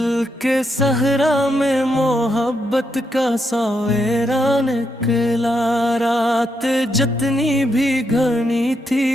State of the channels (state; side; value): normal; both; correlation 0.80